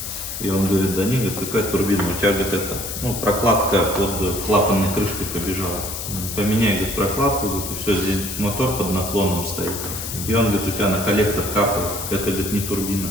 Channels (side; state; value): left; noise; hiss, 6 dB below the sound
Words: И он говорит, да не, говорит, какая турбина, у тебя, говорит, это, прокладка под клапанной крышкой побежала. Поменяй, говорит, прокладку, говорит, и все, здесь мотор под наклоном стоит. И он говорит, у тебя на коллектор капает. Это, говорит, не турбина.